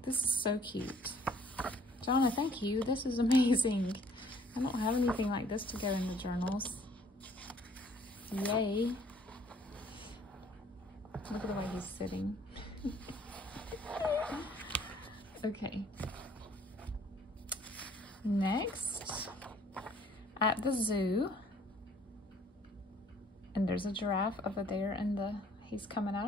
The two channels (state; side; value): normal; both; correlation 0.59